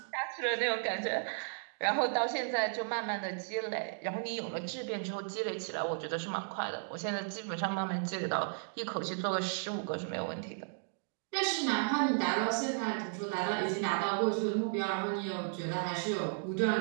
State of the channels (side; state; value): left; silent; digital silence